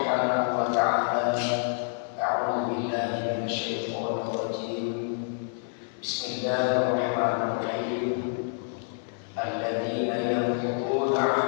wa ta'ala, a'udzu billahi minasy syaithanir rajim. Bismillahirrahmanirrahim. Alladzina yanquduna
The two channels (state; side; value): silent; right; digital silence